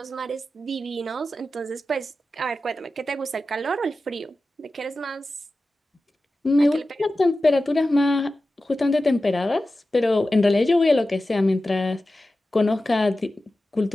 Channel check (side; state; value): both; normal; correlation 0.94